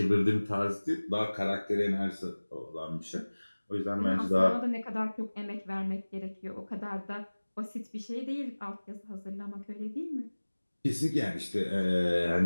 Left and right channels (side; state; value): both; inverted; correlation -1.00